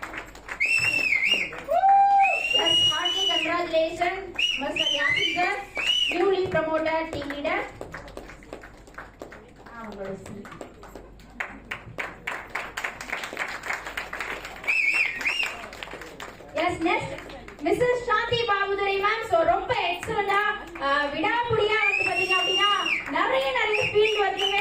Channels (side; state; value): both; identical; correlation 1.00